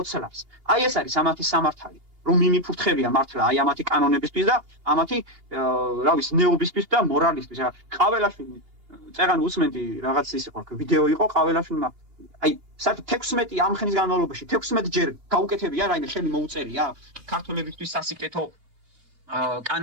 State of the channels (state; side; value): late; left; 2.8 ms